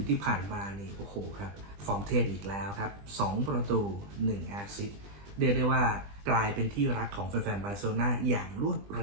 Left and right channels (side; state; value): left; late; 20 ms